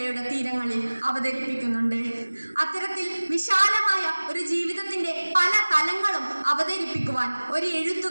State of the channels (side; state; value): both; inverted; correlation -1.00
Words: തീരങ്ങളിൽ അവതരിപ്പിക്കുന്നുണ്ട്. അത്തരത്തിൽ വിശാലമായ ഒരു ജീവിതത്തിന്റെ പല തലങ്ങളും അവതരിപ്പിക്കുവാൻ ഒരു